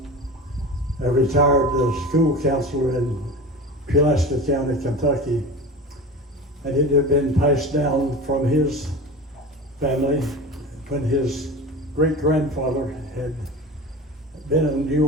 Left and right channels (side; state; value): both; normal; correlation 0.32